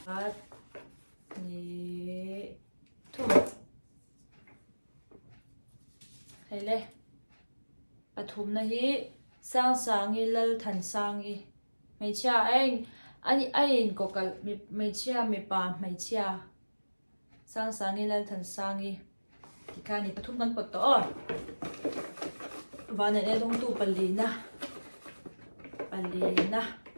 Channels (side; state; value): both; inverted; correlation -1.00